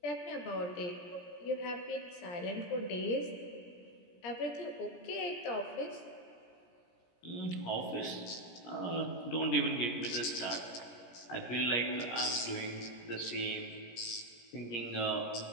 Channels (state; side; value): late; right; 17 ms